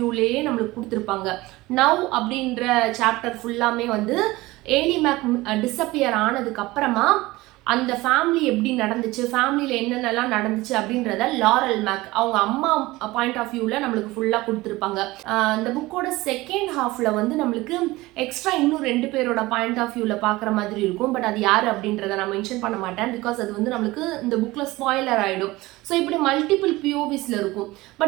நம்மளுக்கு கொடுத்துருப்பாங்க. நவ் அப்படின்ற சாப்டர் ஃபுல்லாமே வந்து ஏலி மேக் டிஸப்பியர் ஆனதுக்கு அப்புறமா அந்த ஃபேமிலி எப்படி நடந்துச்சு, ஃபேமிலியில் என்னென்னலாம் நடந்துச்சு அப்படின்றத லாரல் மேக் அவங்க அம்மா பாயிண்ட் ஆஃப் வியூவில் நம்மளுக்கு ஃபுல்லாக கொடுத்துருப்பாங்க. இந்த புக்கோட செகண்ட் ஹாஃபில் வந்து நம்மளுக்கு எக்ஸ்ட்ரா இன்னும் 2 பேரோட பாயிண்ட் ஆஃப் வியூவில் பார்க்குற மாதிரி இருக்கும். பட் அது யார் அப்படின்றத நான் மென்ஷன் பண்ண மாட்டேன். பிகாஸ் அது வந்து நம்மளுக்கு இந்த புக்கில் ஸ்பாய்லர் ஆகிடும். ஸோ இப்படி மல்டிபிள் பிஓவிஸில் இருக்கும்.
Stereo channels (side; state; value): left; quieter; 19.8 dB